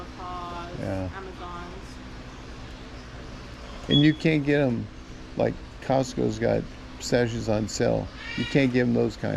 Yeah. Amazons. And you can't get them, like Costco's got pistachios on sale. You can't give them those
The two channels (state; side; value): identical; both; correlation 1.00